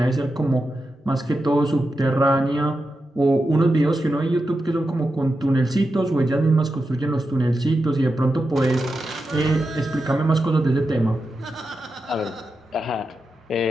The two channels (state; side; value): normal; both; correlation 0.89